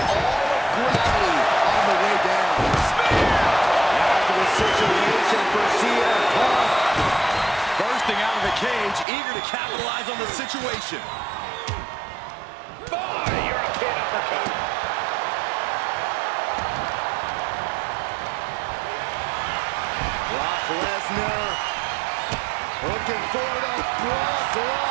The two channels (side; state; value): left; drops out; at 9.1 s